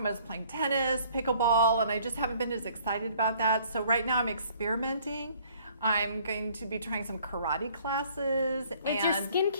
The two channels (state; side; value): inverted; both; correlation -0.58